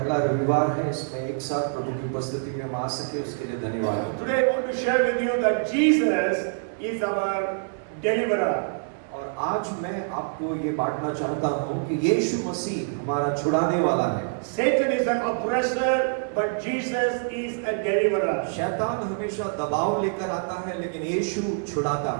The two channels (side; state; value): left; silent; digital silence